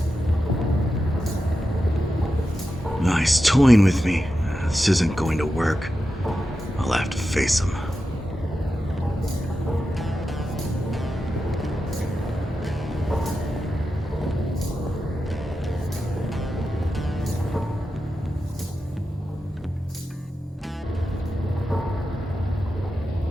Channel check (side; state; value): both; normal; correlation 0.90